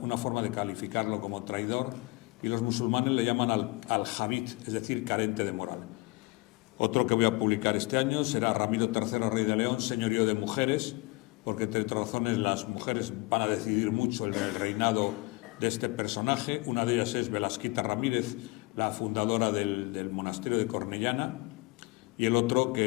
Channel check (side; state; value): right; quieter; 23.9 dB